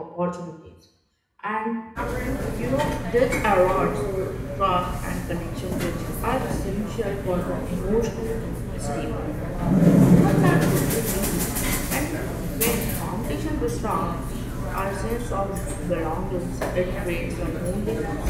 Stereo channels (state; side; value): identical; both; correlation 1.00